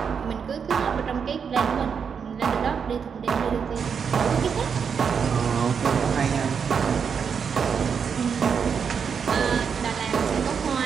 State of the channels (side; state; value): left; quieter; 6.6 dB